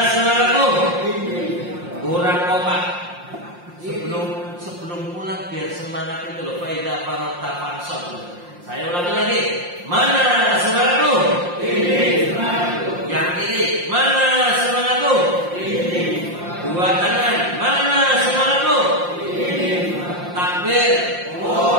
semangatmu? Kurang kompak. Sebelum pulang biar semangat itu loh. Faida farota fansab. Saya ulangi lagi. Mana semangatmu? Ini semangatku. Yang kiri. Mana semangatmu? Ini. Dua tangan. Mana semangatmu? Ini. Takbir.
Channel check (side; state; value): left; late; 5.7 ms